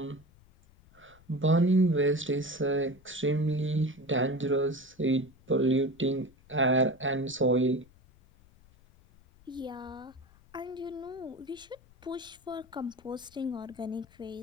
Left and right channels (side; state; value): left; noise; rumble, 27 dB below the sound